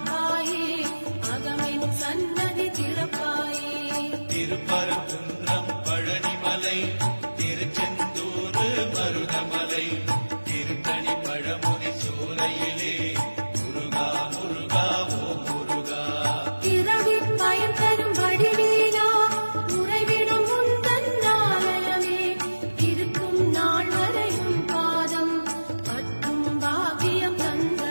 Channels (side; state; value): both; inverted; correlation -1.00